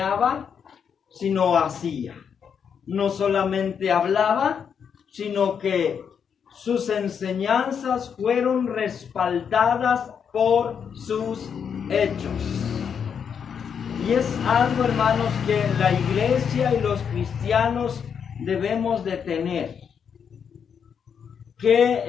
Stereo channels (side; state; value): right; quieter; 7.2 dB